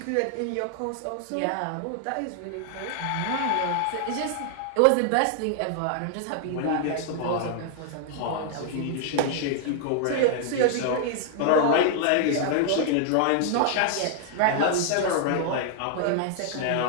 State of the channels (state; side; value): different; both; correlation 0.00